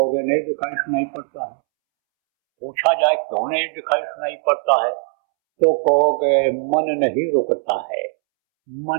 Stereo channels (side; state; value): left; silent; 66 dB below the other